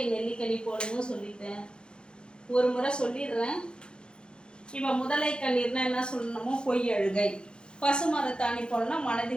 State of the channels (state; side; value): late; right; 0.050 ms